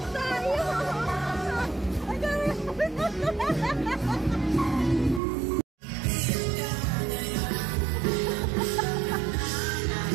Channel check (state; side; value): drops out; left; at 5.2 s